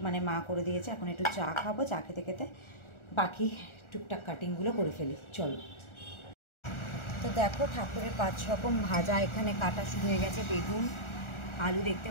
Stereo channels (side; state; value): right; late; 1.4 ms